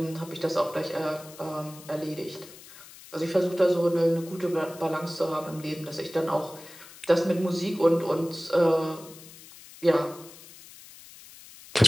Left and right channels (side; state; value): left; noise; hiss, 19 dB below the sound